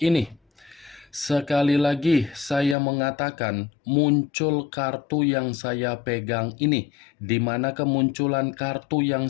ini. Sekali lagi saya mengatakan muncul kartu yang saya pegang ini, di mana kemunculan kartu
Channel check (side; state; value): right; drops out; at 2.8 s